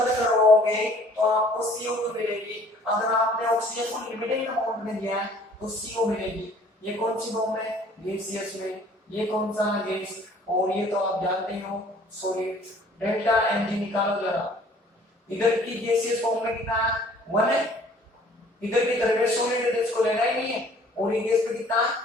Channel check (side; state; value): both; normal; correlation 0.55